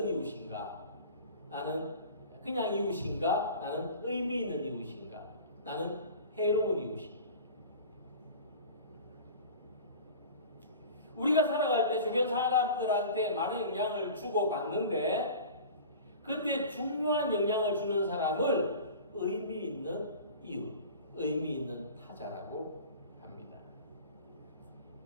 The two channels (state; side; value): inverted; both; correlation -0.39